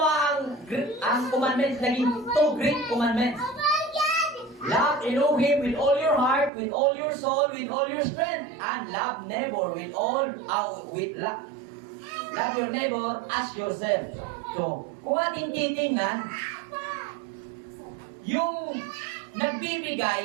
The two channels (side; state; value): left; drops out; at 6.5 s